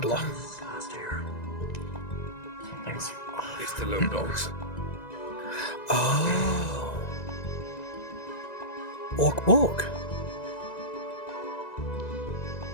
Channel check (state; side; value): late; right; 1.9 ms